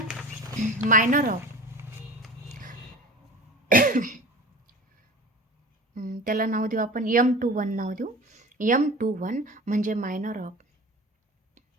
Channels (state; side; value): normal; both; correlation 0.37